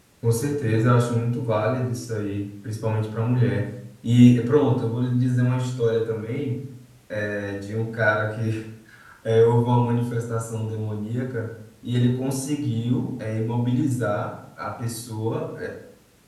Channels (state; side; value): identical; both; correlation 1.00